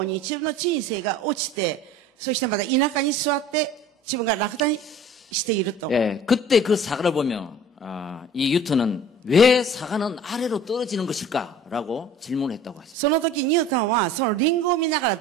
うに自分の人生が落ちて、そしてまた田舎に座って自分が落胆していると。 예, 그때 그 사과를 보면 이 뉴턴은 왜 사과는 아래로 떨어지는 것일까라고 질문했다고 하셨어요. その時ニュートンはそのリンゴを見ながら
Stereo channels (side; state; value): both; normal; correlation 0.45